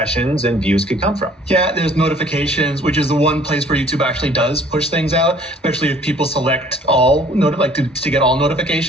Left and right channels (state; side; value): normal; both; correlation 0.55